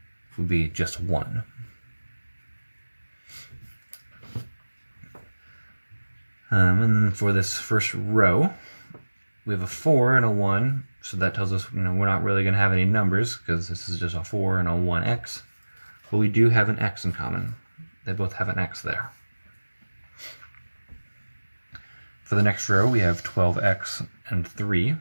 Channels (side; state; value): both; inverted; correlation -1.00